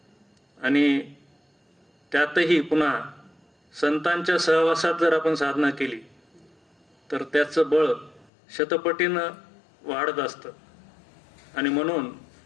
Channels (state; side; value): drops out; right; at 8.3 s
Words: आणि त्यातही पुन्हा संतांच्या सहवासात जर आपण साधना केली तर त्याचं बळ शतपटीनं वाढत असतं आणि म्हणून